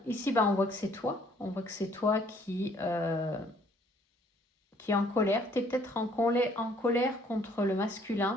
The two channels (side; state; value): both; normal; correlation 0.62